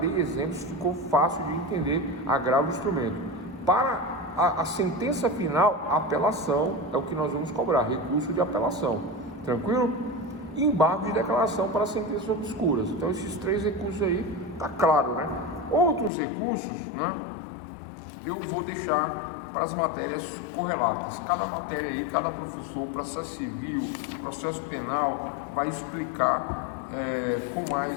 exemplos, ficou fácil de entender agravo de instrumento. Para a sentença final, a apelação é o que nós vamos cobrar, recurso de apelação. Tranquilo? E embargo de declaração para sentenças obscuras. Então, esses 3 recursos aí, tá claro, né? Outros recursos, né? Eu vou deixar para as matérias correlatas. Cada matéria aí, cada professor, processo civil, processo penal, vai explicar com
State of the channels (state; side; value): drops out; right; at 16.1 s